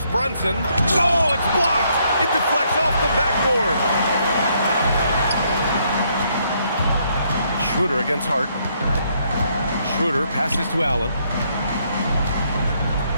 Brunson. Oh, it's blocked. It deflects off the backboard. Schroeder against Hart. Schroeder passes to Allen.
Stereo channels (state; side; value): inverted; both; correlation -0.72